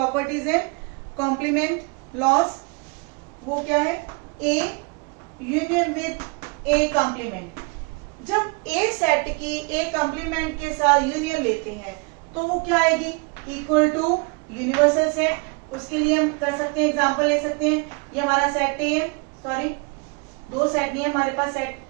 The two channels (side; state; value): left; quieter; 31.5 dB